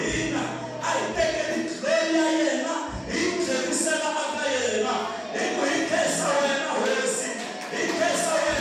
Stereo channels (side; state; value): both; identical; correlation 1.00